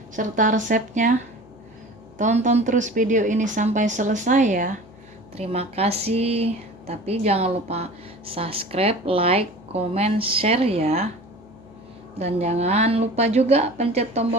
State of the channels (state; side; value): noise; left; hum, 28 dB below the sound